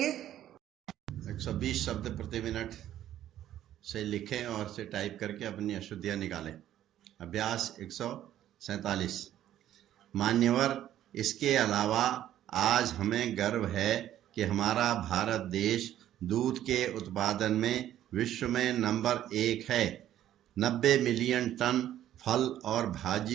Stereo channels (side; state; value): left; quieter; 12.1 dB